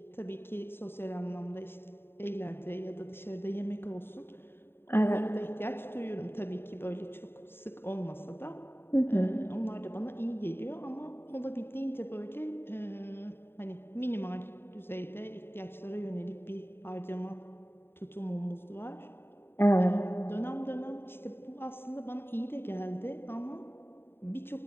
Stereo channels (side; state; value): right; late; 0.11 ms